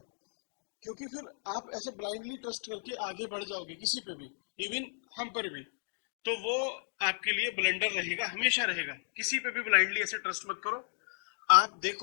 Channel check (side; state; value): right; silent; digital silence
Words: क्योंकि फिर आप ऐसे ब्लाइंडली ट्रस्ट करके आगे बढ़ जाओगे किसी पे भी, इवन हम पर भी, तो वो आपके लिए ब्लंडर रहेगा, हमेशा रहेगा। किसी पे भी ब्लाइंडली ऐसे ट्रस्ट मत करो। आप